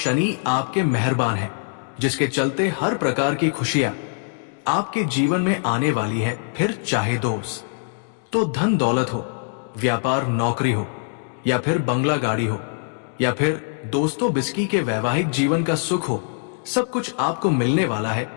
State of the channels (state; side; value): silent; right; digital silence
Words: आपके मेहरबान हैं, जिसके चलते हर प्रकार की खुशियां आपके जीवन में आने वाली है। फिर चाहे दोस्त तो धन दौलत हो, व्यापार नौकरी हो, या फिर बंगला गाड़ी हो, या फिर दोस्तों बिस्की के वैवाहिक जीवन का सुख हो, सब कुछ आपको मिलने वाला है।